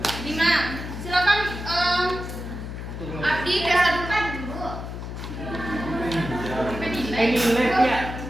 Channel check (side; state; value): left; noise; hum, 8 dB below the sound